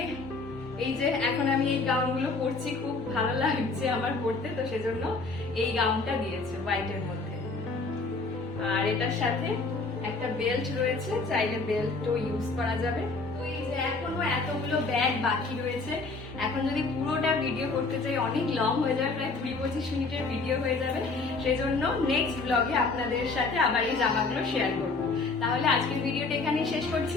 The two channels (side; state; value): right; quieter; 3.8 dB